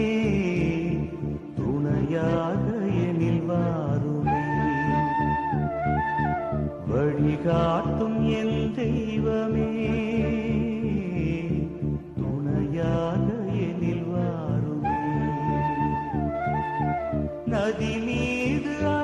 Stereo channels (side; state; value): both; identical; correlation 1.00